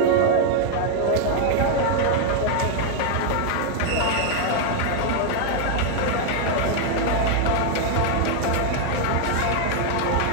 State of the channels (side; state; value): both; different; correlation 0.00